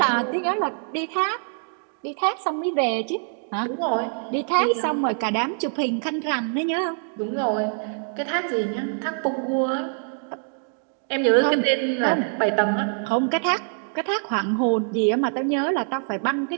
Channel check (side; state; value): left; silent; 62 dB below the other